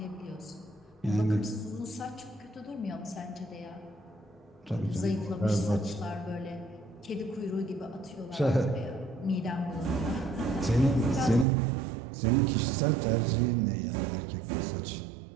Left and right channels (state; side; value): drops out; left; at 11.5 s